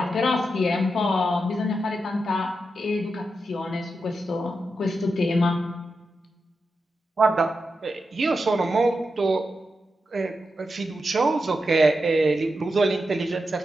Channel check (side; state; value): both; normal; correlation 0.88